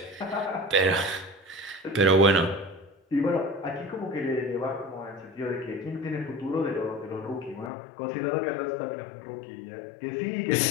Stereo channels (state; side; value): drops out; right; at 7.7 s